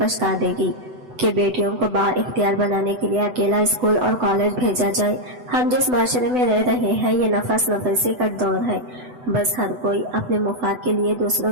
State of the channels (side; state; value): left; late; 8.0 ms